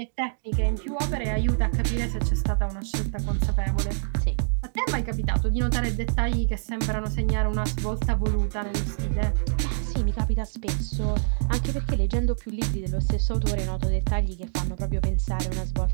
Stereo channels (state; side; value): silent; left; digital silence